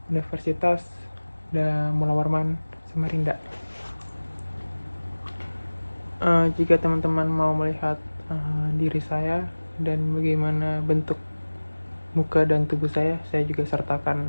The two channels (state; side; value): inverted; both; correlation -1.00